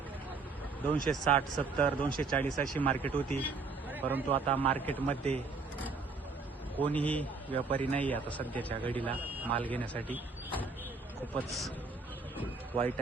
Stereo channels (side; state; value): left; quieter; 4.2 dB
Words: 260, 70, 240 अशी मार्केट होती, परंतु आता मार्केटमध्ये कोणीही व्यापारी नाही आता सध्याच्या घडीला माल घेण्यासाठी। खूपच वाईट